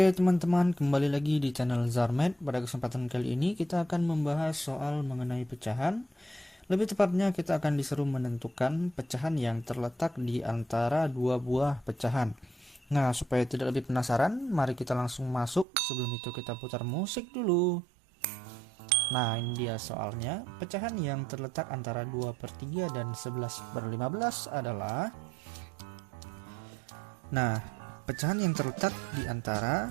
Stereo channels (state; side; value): drops out; left; at 15.7 s